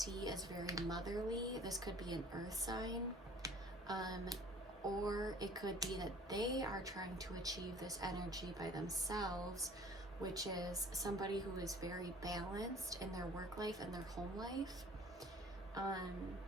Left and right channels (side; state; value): both; normal; correlation 0.50